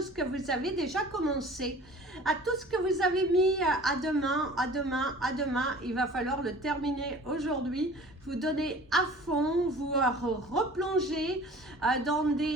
que vous avez déjà commencées. À tout ce que vous avez mis à demain, il va falloir le terminer aujourd'hui. Vous donner à fond, vous replonger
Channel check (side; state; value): both; normal; correlation 0.45